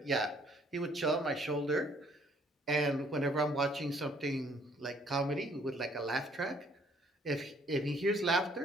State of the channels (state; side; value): normal; both; correlation 0.62